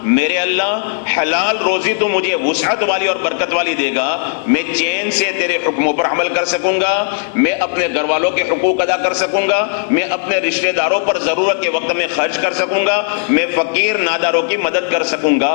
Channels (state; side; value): silent; right; 55 dB below the other